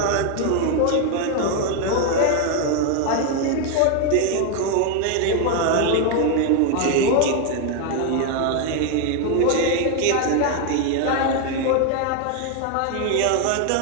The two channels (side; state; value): both; different; correlation 0.01